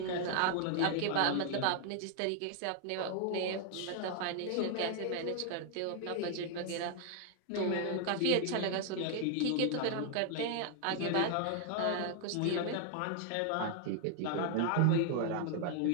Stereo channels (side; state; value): both; different; correlation 0.00